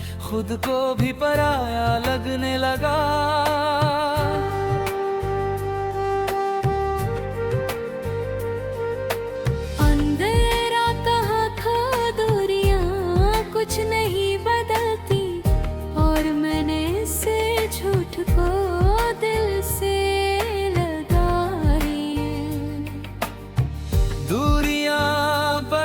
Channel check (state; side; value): identical; both; correlation 1.00